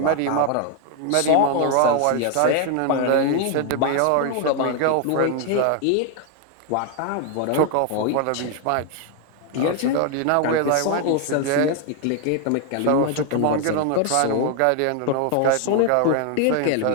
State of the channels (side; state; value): both; different; correlation 0.00